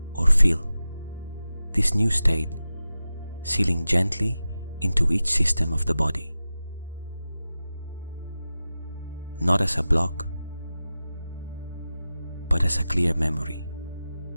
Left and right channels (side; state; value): both; inverted; correlation -0.94